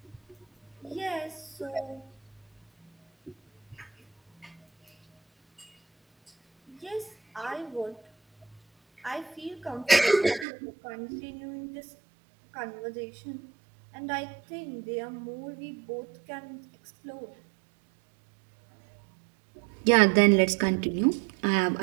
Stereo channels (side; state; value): left; drops out; at 10.5 s